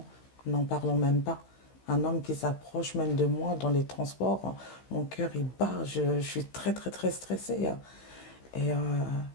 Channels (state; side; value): late; right; 15 ms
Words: n'en parlons même pas. Un homme qui s'approche même de moi dans les transports, mon cœur il bat, je suis très très très stressée. Et